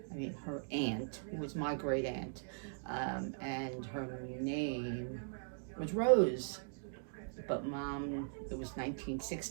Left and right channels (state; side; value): silent; left; digital silence